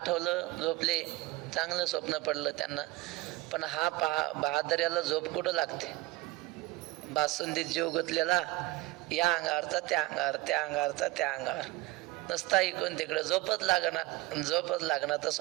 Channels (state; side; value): quieter; left; 19.3 dB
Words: झोपले, चांगलं स्वप्न पडलं त्यांना. पण हा बहादर्याला झोप कुठं लागते? बासुंदीत जीव गुंतलेला, या अंगावरचा त्या अंगावर, त्या अंगावरचा त्या अंगावर, नसता इकडून तिकडे झोपच लागणार तर